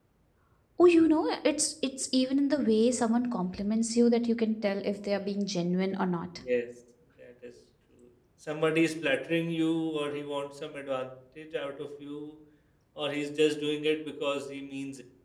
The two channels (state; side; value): identical; both; correlation 1.00